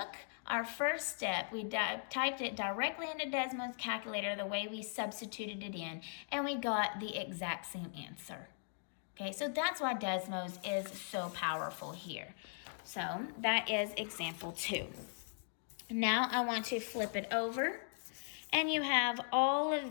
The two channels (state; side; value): silent; right; digital silence